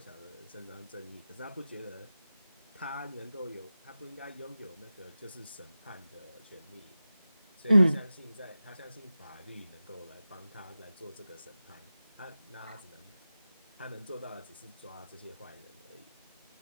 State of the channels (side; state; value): both; inverted; correlation -0.94